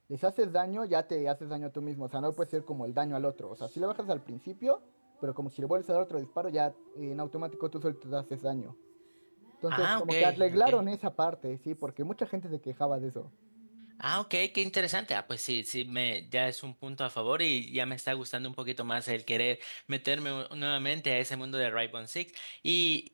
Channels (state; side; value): inverted; both; correlation -1.00